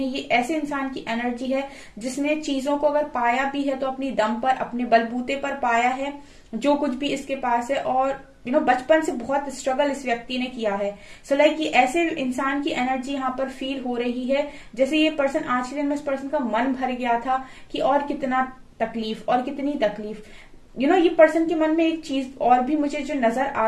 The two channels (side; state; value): both; identical; correlation 1.00